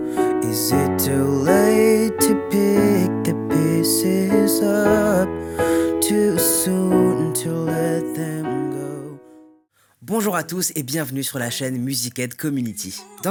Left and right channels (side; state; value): both; identical; correlation 1.00